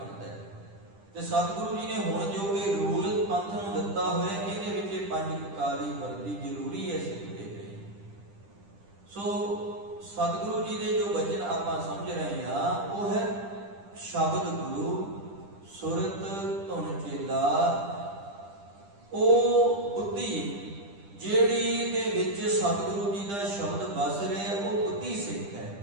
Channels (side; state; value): left; late; 10 ms